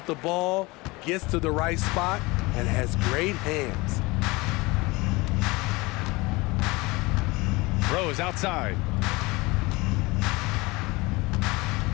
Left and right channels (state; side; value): quieter; right; 23.4 dB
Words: the ball, gets to the right spot, and has great hands. Rose outside.